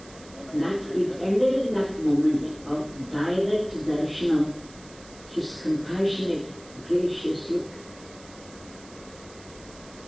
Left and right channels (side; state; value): right; noise; hiss, 21 dB below the sound